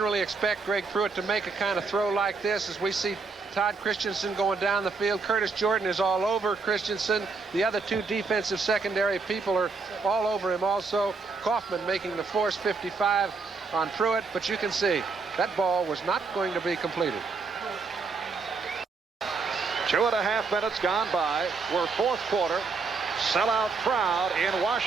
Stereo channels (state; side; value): quieter; left; 4.5 dB